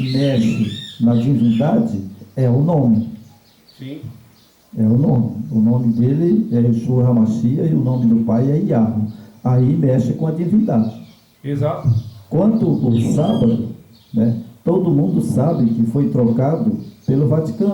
mexe na divindade é o nome. Sim. É o nome. O nome dele é Yeshua HaMashiach e o nome do pai é Yahweh. Aí mexe com a divindade. Exato. Quanto o sábado, né, todo mundo sabe que foi trocado pelo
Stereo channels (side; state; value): both; identical; correlation 1.00